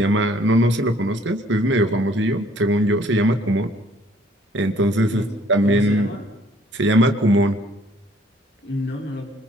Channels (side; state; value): both; normal; correlation 0.60